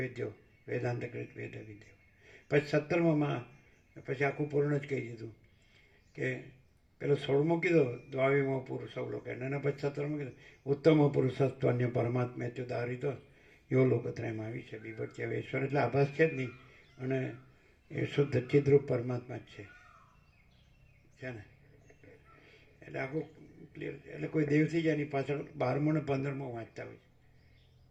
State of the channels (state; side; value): identical; both; correlation 1.00